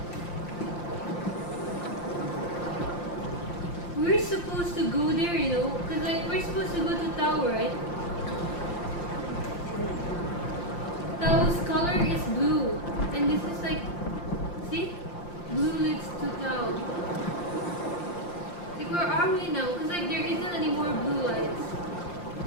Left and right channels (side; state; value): right; late; 5.7 ms